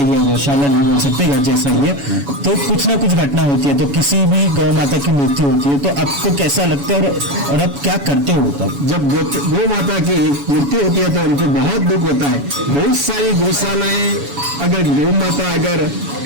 है, गौशाला नहीं बोल सकते, घर जैसा ही है, तो कुछ ना कुछ घटना होती है, तो किसी भी गौ माता की मृत्यु होती है, तो आपको कैसा लगता है और आप क्या करते हो तब? जब गौ माता की मृत्यु होती है तो उनको बहुत दुख होता है। बहुत सारी गौशालाएं अगर गौ माता अगर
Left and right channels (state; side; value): late; left; 7.1 ms